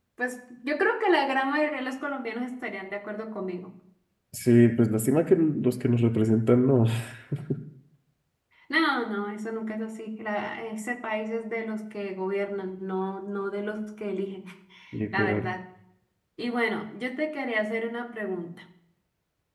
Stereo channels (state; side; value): identical; both; correlation 1.00